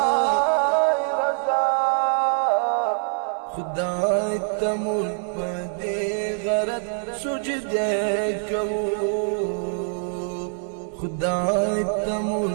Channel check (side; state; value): left; silent; digital silence